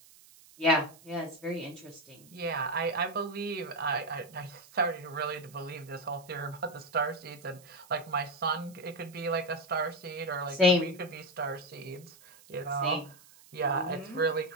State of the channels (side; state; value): right; noise; hiss, 23 dB below the sound